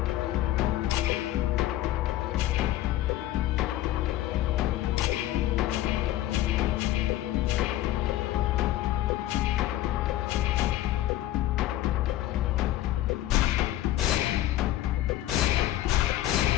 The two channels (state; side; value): quieter; right; 14.5 dB